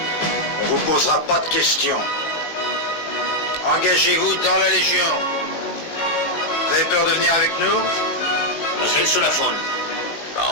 On vous posera pas de questions. Engagez-vous dans la Légion. Vous avez peur de venir avec nous? Was hältst du davon?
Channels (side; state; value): right; late; 18 ms